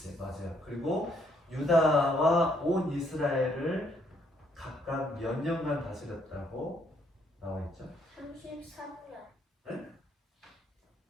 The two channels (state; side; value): normal; both; correlation 0.69